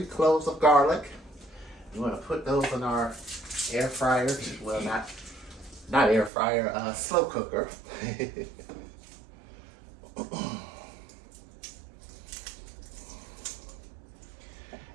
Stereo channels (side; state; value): left; drops out; at 6.3 s